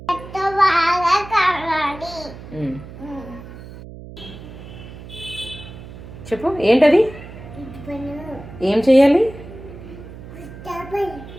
చెప్పు ఏంటది? ఏం చెయ్యాలి?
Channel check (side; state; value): right; noise; hum, 15 dB below the sound